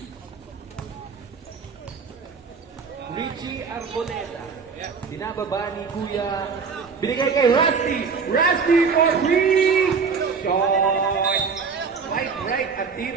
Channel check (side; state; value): left; quieter; 5.5 dB